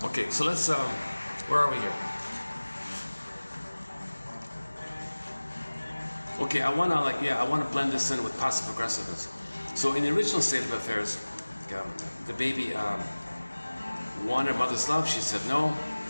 Okay, so let's. Where are we here? Okay, I want to blend this in with passive aggressiveness. So in the original state of affairs, the baby wanted mother's love. She said no.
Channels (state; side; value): inverted; both; correlation -1.00